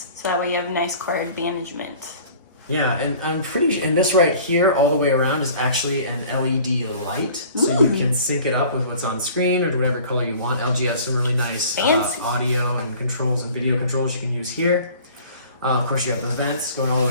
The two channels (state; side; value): inverted; both; correlation -0.48